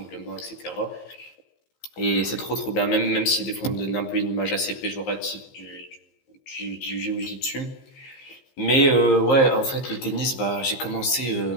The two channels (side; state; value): right; late; 15 ms